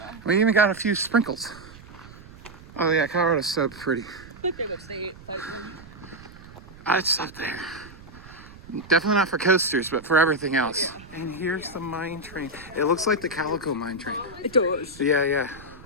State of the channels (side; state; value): right; noise; rumble, 19 dB below the sound